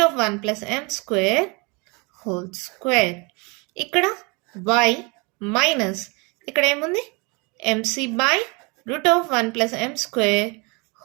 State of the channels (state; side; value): quieter; left; 29.4 dB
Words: of 1 plus m square whole square. ఇక్కడ y మైనస్ ఇక్కడ ఏముంది? mc by root of 1 plus m square